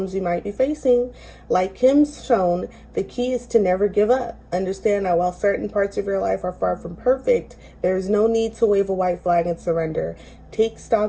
you might be facing. Like Kim's shown, the key is to never give up. Understand that while certain parts of your life are far from perfect, there is no need to wave a white flag and surrender. Take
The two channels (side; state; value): both; identical; correlation 1.00